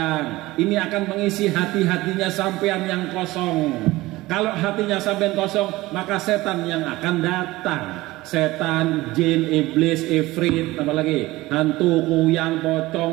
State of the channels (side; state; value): left; quieter; 18.9 dB